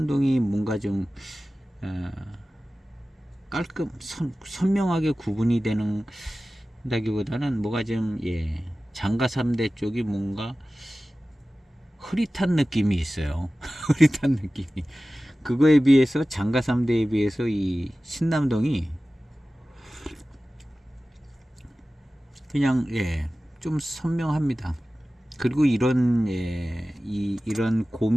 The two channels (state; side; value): normal; both; correlation 0.96